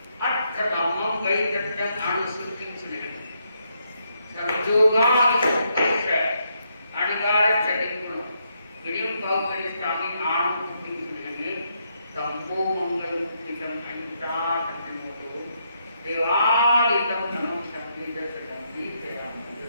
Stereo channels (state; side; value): inverted; both; correlation -0.77